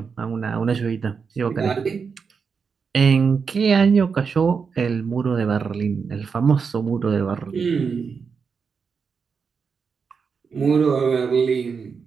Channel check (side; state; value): left; quieter; 5.7 dB